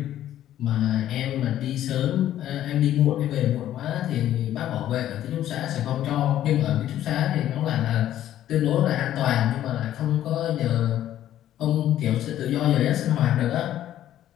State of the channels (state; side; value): quieter; right; 12.2 dB